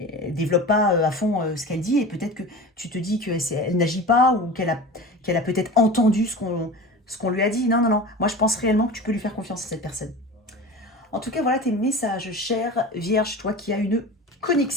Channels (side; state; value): both; normal; correlation 0.33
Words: ne développe pas à fond ce qu'elle dit et peut-être que tu te dis qu'elle n'agit pas ou qu'elle a peut-être entendu ce qu'on lui a dit. Non, non, non. Moi, je pense réellement que tu peux lui faire confiance à cette personne. En tout cas, voilà tes messages, chère Vierge, toi qui as une